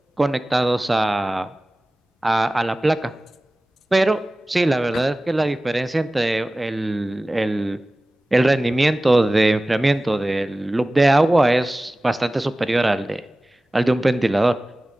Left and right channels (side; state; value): both; normal; correlation 0.97